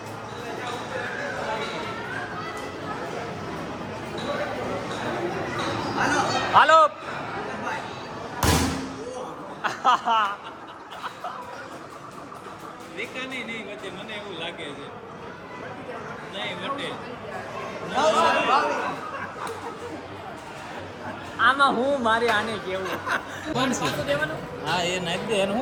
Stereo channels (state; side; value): identical; both; correlation 1.00